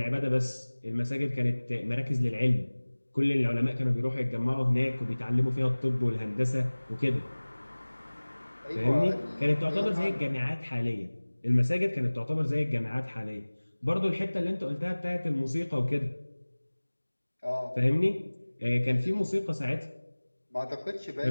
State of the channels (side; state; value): both; inverted; correlation -1.00